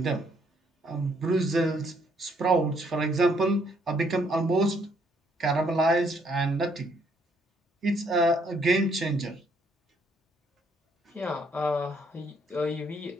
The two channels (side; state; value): both; normal; correlation 0.69